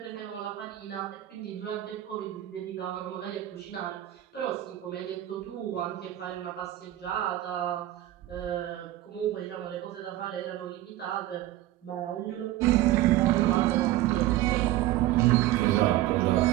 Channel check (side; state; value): left; quieter; 14.8 dB